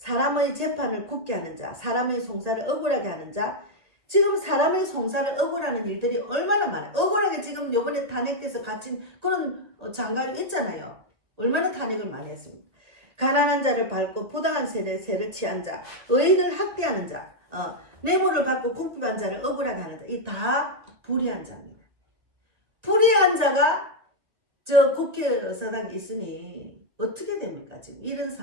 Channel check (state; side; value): late; left; 2.0 ms